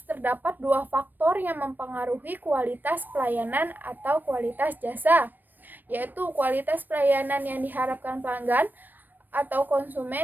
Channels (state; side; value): late; left; 0.090 ms